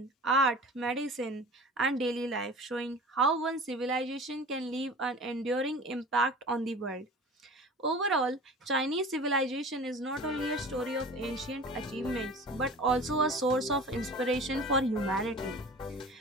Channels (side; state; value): both; normal; correlation 0.39